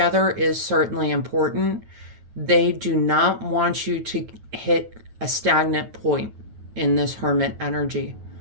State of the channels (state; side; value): late; left; 9.4 ms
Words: is certainly important. They do not want you to hit a stagnant point in this hermit energy,